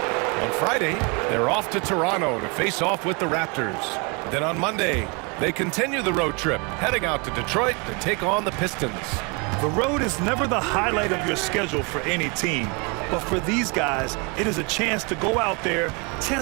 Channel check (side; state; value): left; quieter; 31.5 dB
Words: On Friday, they're off to Toronto to face off with the Raptors. Then on Monday, they continue the road trip, heading out to Detroit to take on the Pistons. The road is never the highlight of your schedule for any team. But for these guys, it is a chance to go out there,